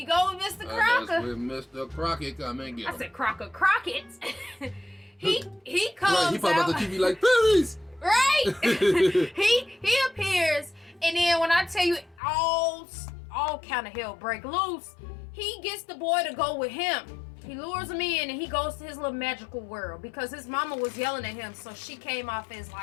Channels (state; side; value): drops out; right; at 12.2 s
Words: go with Mr. Crocker. That's where Mr. Crocket come and get him. I said Crocket. he comes right, he popped out the TV like, please. Right. he appears, and then when I tell you all kind of hell break loose, he gets the boy to go with him. He lures him in, and he goes to his little magical world because his mama was yelling at him, so she came off as